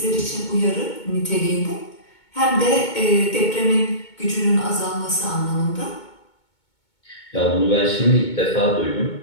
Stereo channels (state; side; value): late; right; 2.2 ms